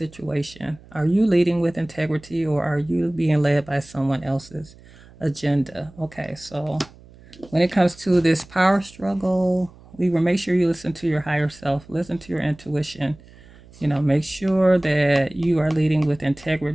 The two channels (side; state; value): right; noise; hum, 23 dB below the sound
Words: Are you leading with integrity or are you being led by someone else's agenda? Okay, so when it comes to this power struggle, we will make sure you listen to your higher self, listen to your intuition. Make sure that you are leading with